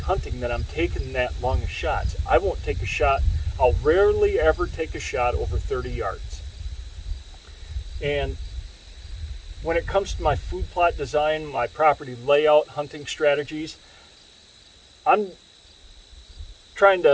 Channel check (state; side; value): identical; both; correlation 1.00